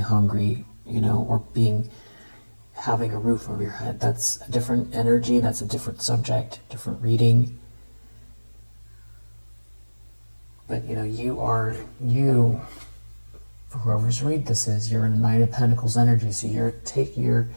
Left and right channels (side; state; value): both; inverted; correlation -1.00